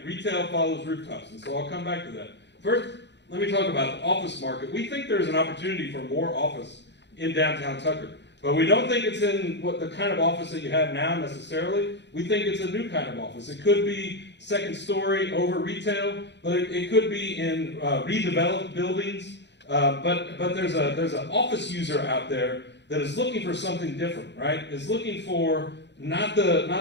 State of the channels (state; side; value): late; right; 0.51 ms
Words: Retail follows rooftops, and so I'll come back to that. First, let me talk about the office market. We think there's an opportunity for more office in downtown Tucker, but we don't think it's in the kind of office that you have now necessarily. We think it's a new kind of office. It could be second story over retail, but it could be in redeveloped buildings. But there's an office user out there that is looking for something different, right? Is looking for not